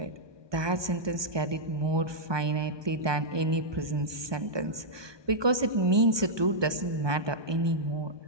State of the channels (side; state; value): left; late; 1.2 ms